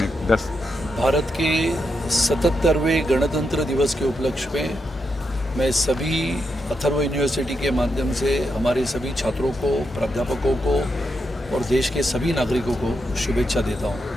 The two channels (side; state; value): both; normal; correlation 0.84